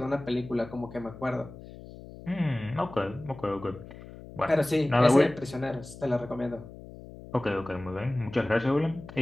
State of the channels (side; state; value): left; noise; hum, 16 dB below the sound